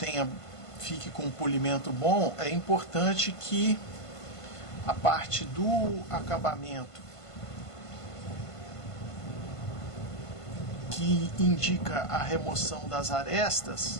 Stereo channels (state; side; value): late; right; 1.5 ms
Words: fique com um polimento bom, é importante que a parte do acabamento que indica a remoção das arestas